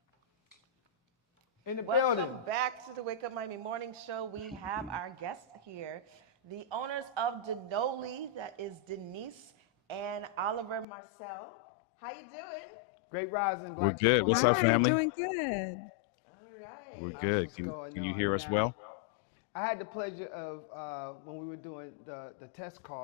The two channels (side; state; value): right; drops out; at 10.9 s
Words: In the Welcome building. back to the Wake Up Miami Morning Show. We have our guest here, the owners of Denoli, that is Denise and Oliver Marcel. How you doing? Great rising. We're good. What's up, family? Doing good. All right. We're good. Can you hear us well? I had the pleasure of, when we were doing the test